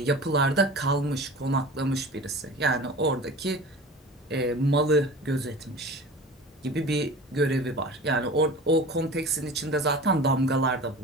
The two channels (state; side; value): normal; both; correlation 0.37